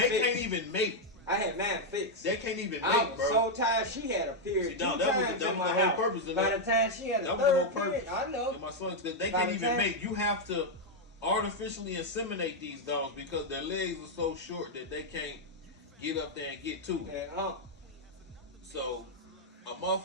even mate. I had mine fixed. They can't even I mate, was bro. so tired. She had a period. See, no, that was the whole purpose of By that. the time she had a That was the third whole purpose. period, I know. And my son, they By can't the even time- mate. You have to artificially inseminate these dogs because their legs are so short that they can't get up there and get to it. Yeah, So a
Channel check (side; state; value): both; normal; correlation 0.00